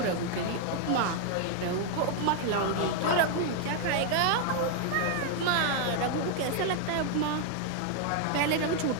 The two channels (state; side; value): different; both; correlation 0.00